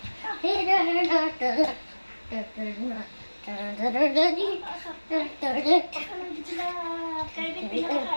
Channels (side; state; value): both; inverted; correlation -1.00